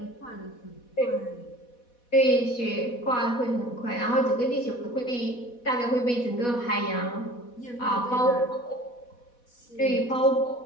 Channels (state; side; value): late; right; 4.1 ms